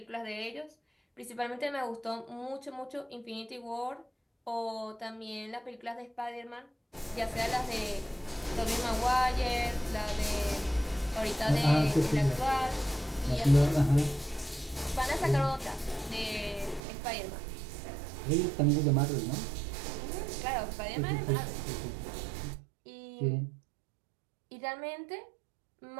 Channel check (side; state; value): left; drops out; at 16.8 s